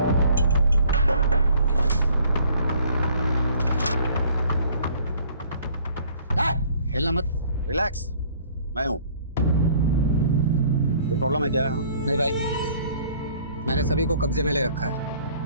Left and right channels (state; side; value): inverted; both; correlation -0.57